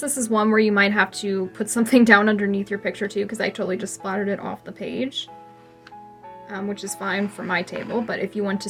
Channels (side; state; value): both; identical; correlation 1.00